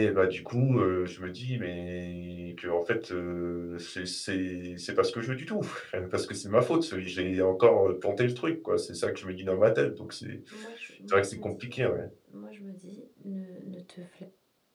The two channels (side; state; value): both; identical; correlation 1.00